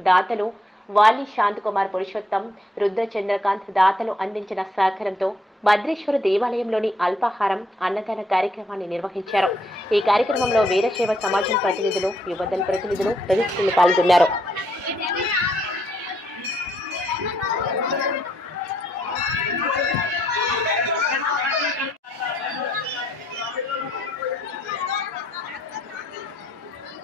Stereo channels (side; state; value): both; normal; correlation 0.72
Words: దాతలు వాలి శాంతకుమార్ పురుషోత్తం, రుద్ర చంద్రకాంత్ దాతలు అందించిన సహకారంతో భద్రేశ్వర దేవాలయంలోని అల్పాహారం అన్నదాన కార్యక్రమాన్ని నిర్వహించారు. ఈ కార్యక్రమంలో వీరశైవ సమాజం ప్రతినిధులు, యువదళ ప్రతినిధులు తదితరులు పాల్గొన్నారు.